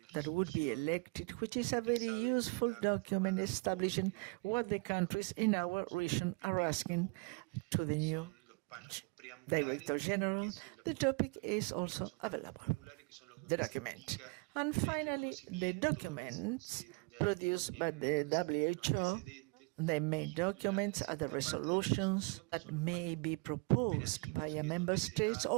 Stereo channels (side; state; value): left; quieter; 30.4 dB